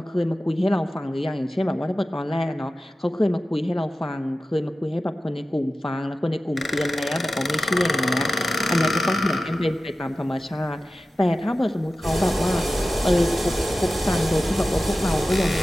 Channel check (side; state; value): both; normal; correlation 0.94